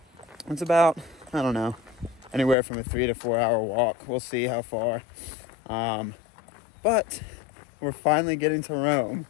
it's about, I don't know, anywhere from a 3 to 4 hour walk. We'll see how far. But we're finally getting to Rome.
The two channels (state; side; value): drops out; right; at 2.6 s